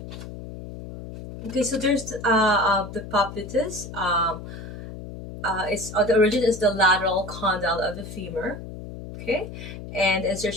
Okay, so there's the poplites. It's the origin is the lateral condyle of the femur. Okay, and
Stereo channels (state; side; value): noise; left; hum, 11 dB below the sound